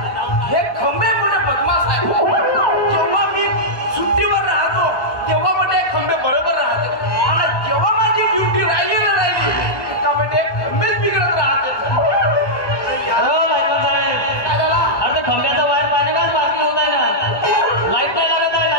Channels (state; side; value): late; right; 1.2 ms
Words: हे खंबे कुठे बदमाश आहे. जेव्हा मी सुट्टीवर राहतो तेव्हा म्हणजे खंबे बरोबर राहते, आणि जेव्हा माझी ड्युटी राहिली ना का म्हणजे खंबेच बिघडत राहते. अरे खंब्याचा वायर पाणी काच बाकी होत आहे ना, लाईट नाही लागत आहे.